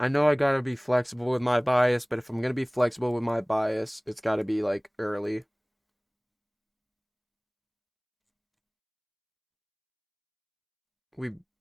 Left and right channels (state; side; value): identical; both; correlation 1.00